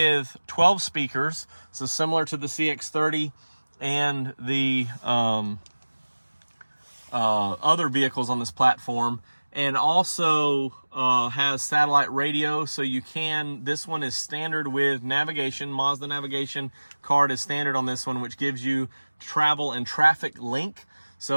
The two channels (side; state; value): both; inverted; correlation -1.00